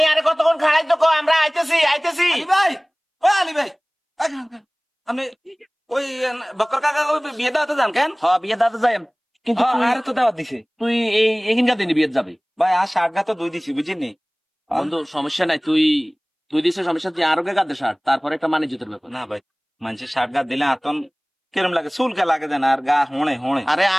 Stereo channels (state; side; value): identical; both; correlation 1.00